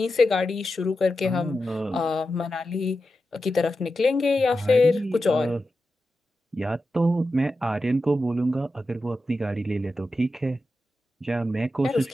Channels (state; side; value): normal; both; correlation 0.91